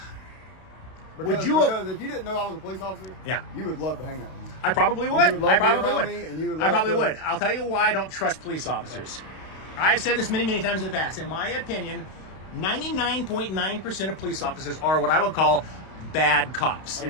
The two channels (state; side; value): late; right; 32 ms